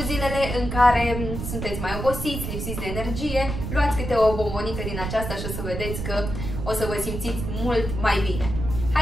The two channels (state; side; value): noise; right; rumble, 5 dB below the sound